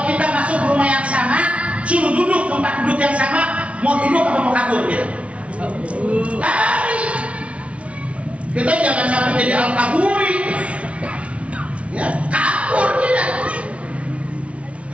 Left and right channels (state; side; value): late; left; 0.063 ms